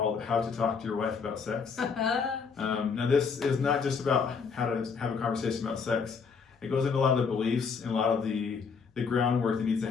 How to Talk to Your Wife About Sex. Now this is not just about how to have a conversation about sex. It goes into a lot of the beliefs and a lot of the groundwork that needs to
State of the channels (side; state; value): right; quieter; 5.6 dB